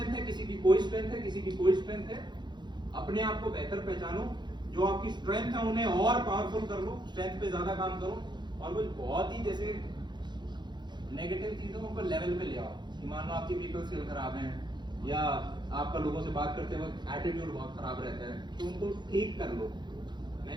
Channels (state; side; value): late; left; 0.21 ms